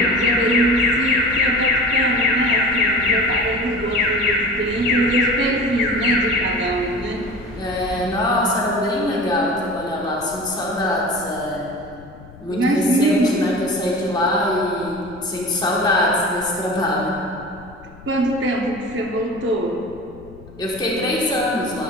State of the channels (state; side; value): noise; left; rumble, 20 dB below the sound